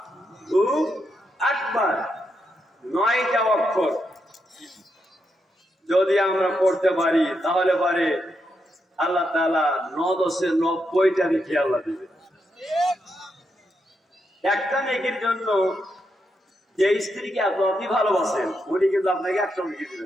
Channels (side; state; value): both; normal; correlation 0.83